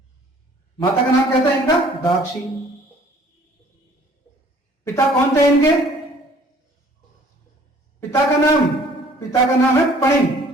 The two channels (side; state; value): both; normal; correlation 0.55